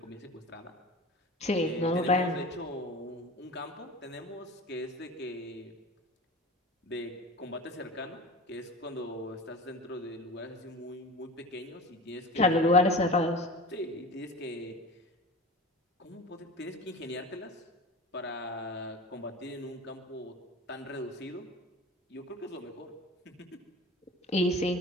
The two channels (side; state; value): both; normal; correlation 0.34